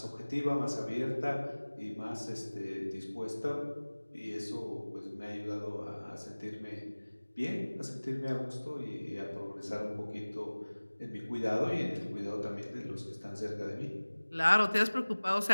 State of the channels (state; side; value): inverted; both; correlation -1.00